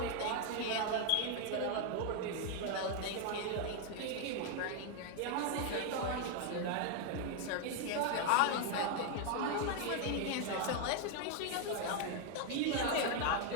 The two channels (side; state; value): both; different; correlation 0.00